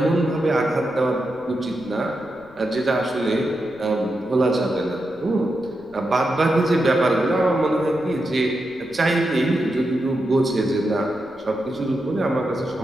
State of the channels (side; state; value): left; noise; rumble, 27 dB below the sound